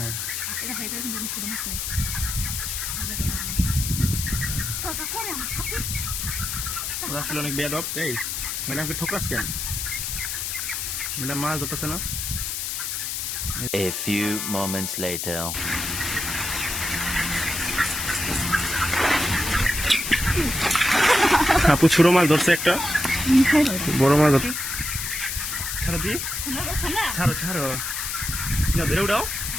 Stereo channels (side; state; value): left; noise; hiss, 3 dB below the sound